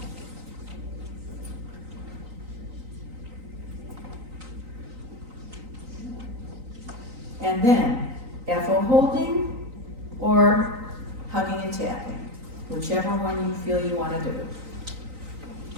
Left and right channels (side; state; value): left; late; 3.9 ms